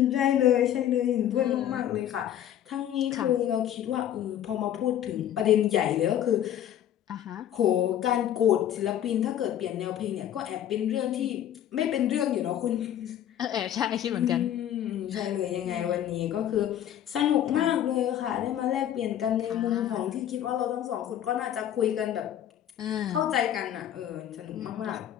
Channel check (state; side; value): quieter; right; 10.9 dB